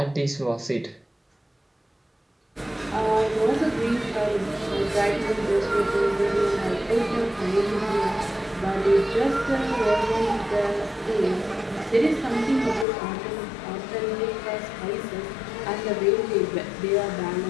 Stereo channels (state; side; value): drops out; right; at 12.9 s